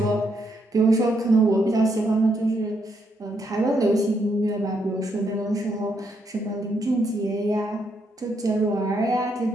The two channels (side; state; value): both; normal; correlation 0.76